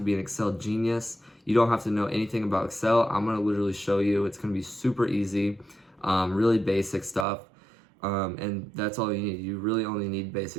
be an Excel genius. You don't have to know anything about Excel. I'm gonna literally show you. It's gonna be super easy, really basic stuff. And that's all you need. You really only need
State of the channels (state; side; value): drops out; left; at 7.2 s